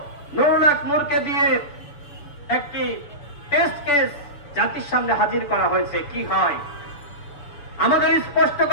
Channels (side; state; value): right; late; 6.9 ms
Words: নুরুল হক নূরকে দিয়ে একটি টেস্ট কেস জাতির সামনে হাজির করা হয়েছে। কি হয়? আমাদের স্পষ্ট